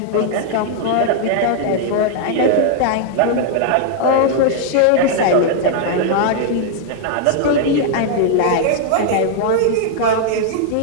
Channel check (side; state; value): both; different; correlation -0.01